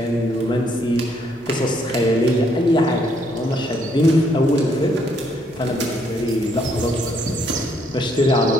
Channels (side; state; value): both; normal; correlation 0.70